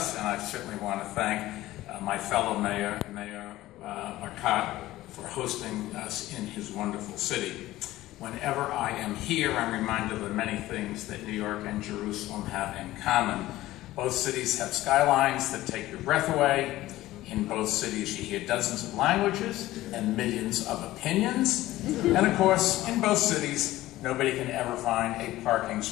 and I certainly want to thank my fellow mayor, Mayor Marcotte, for hosting us in his wonderful city. Whenever I am here, I'm reminded of the many things that New York and Jerusalem have in common. Both cities have skylines that take your breath away. In both cities, you hear dozens of languages and millions of opinions. And of course, in both cities, nobody can ever find a parking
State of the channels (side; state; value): right; quieter; 16.2 dB